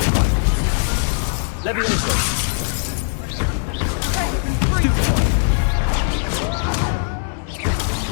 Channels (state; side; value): silent; right; 63 dB below the other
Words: Levioso! Confringo! Stupefy!